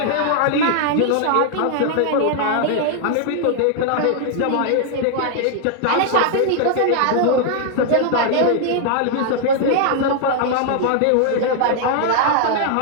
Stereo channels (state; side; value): different; both; correlation 0.00